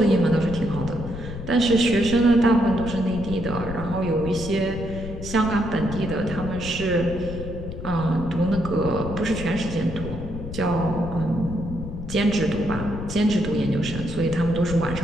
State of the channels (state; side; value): noise; left; rumble, 9 dB below the sound